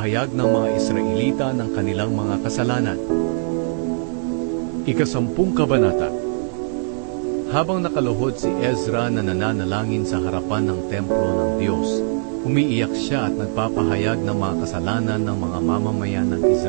ng mga Israelita ng kanilang mga kasalanan. Ika-10 kabanata. Habang nakaluhod si Ezra na nananalangin sa harapan ng templo ng Diyos, umiiyak siya at nagpapahayag ng mga kasalanan ng mga mamamayan ng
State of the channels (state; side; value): silent; left; digital silence